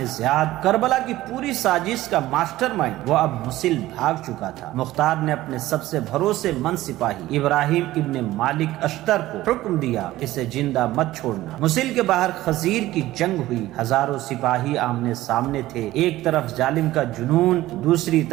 زیاد، کربلا کی پوری سازش کا ماسٹر مائنڈ۔ وہ اب موصل بھاگ چکا تھا۔ مختار نے اپنے سب سے بھروسے مند سپاہی ابراہیم ابن مالک اشتر کو حکم دیا، اسے زندہ مت چھوڑنا۔ موصل کے باہر خزیر کی جنگ ہوئی، ہزاروں سپاہی آمنے سامنے تھے، ایک طرف ظالم کا جنون، دوسری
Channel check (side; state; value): left; quieter; 16.1 dB